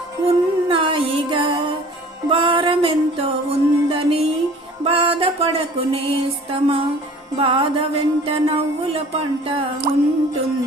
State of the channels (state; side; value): normal; both; correlation 0.47